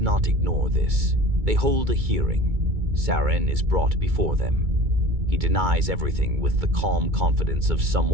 ignore this. They hold a hearing. Saren is brought before them. He denies everything with the calm confidence of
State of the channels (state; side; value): late; left; 2.2 ms